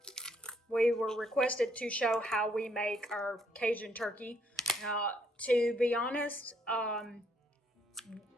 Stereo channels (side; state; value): both; normal; correlation 0.69